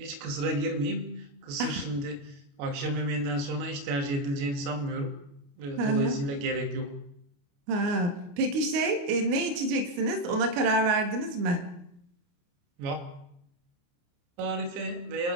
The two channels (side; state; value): left; late; 28 ms